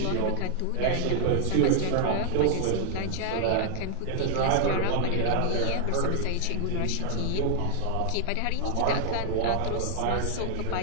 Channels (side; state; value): both; different; correlation -0.01